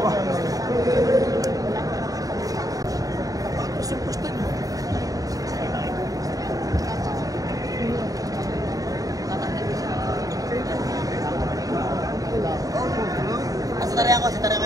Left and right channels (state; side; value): late; left; 0.17 ms